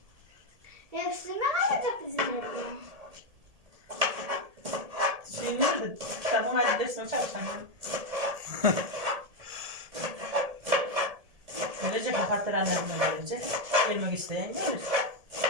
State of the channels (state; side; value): late; left; 1.7 ms